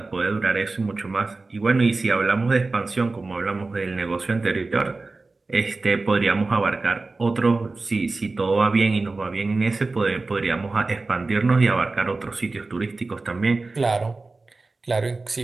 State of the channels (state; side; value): quieter; left; 3.6 dB